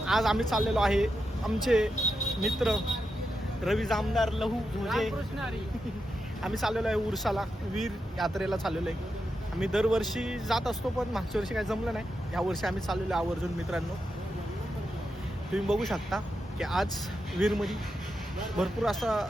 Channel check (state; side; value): normal; both; correlation 0.87